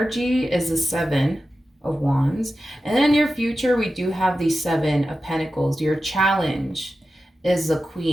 is the 7 of Wands. And then in your future we do have the 7 of Pentacles. Your challenge is the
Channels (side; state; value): both; normal; correlation 0.92